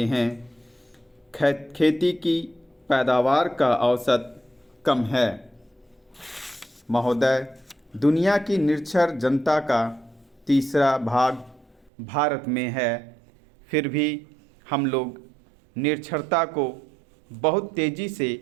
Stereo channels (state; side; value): drops out; left; at 11.9 s